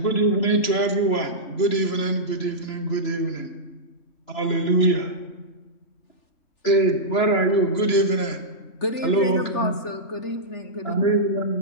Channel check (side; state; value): right; late; 3.0 ms